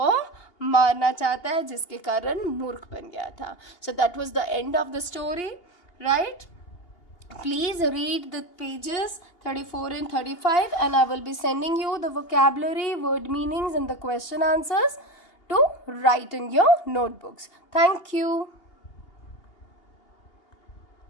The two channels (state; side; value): late; right; 2.8 ms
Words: मारना चाहता है, जिसके कारण मूर्ख बन गया था. So that was the end of the story, right? Please read the pages 34 and 35 and I will be sending you the vocabulary, word meanings and the question answers to write in your notebooks. Thank you.